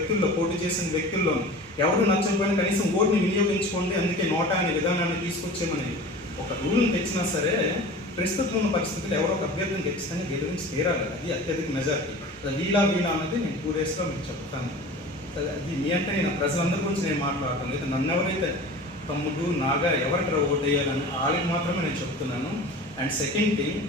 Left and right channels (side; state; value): both; normal; correlation 0.38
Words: పోటీ చేసిన వ్యక్తుల్లో ఎవరు నచ్చకపోయినా కనీసం ఓటుని వినియోగించుకోండి, అందుకే నోటా అనే విధానాన్ని తీసుకొచ్చేమని ఒక రూల్ని తెచ్చినా సరే ప్రస్తుతం ఉన్న పరిస్థితులు ఎవరో ఒక అభ్యర్థిని ఖచ్చితంగా గెలిపించి తీరాలి. అది అత్యధిక మెజారిటీ. వీలా అన్నది నేను 2 daysలో మీకు చెప్తాను. అది మీ అంటే నేను ప్రజలందరి గురించి నేను మాట్లాడతాను, లేదా నన్ను ఎవరైతే తమ్ముడు నాగా ఎవరికి ఓటు వేయాలని వాళ్ళకి మాత్రమే నేను చెప్తున్నాను. అండ్ సెకండ్ థింగ్,